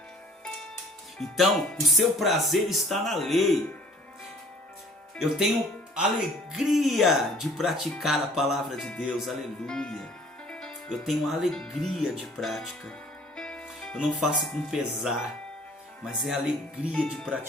Então, o seu prazer está na lei. Eu tenho alegria de praticar a palavra de Deus, aleluia. Eu tenho alegria de prática. Eu não faço com pesar, mas é alegria de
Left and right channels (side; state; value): both; normal; correlation 0.53